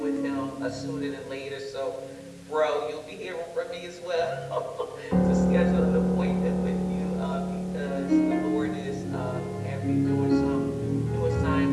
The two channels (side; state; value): both; identical; correlation 1.00